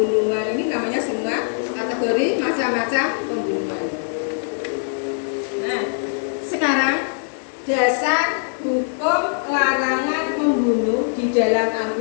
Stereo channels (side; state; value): right; silent; digital silence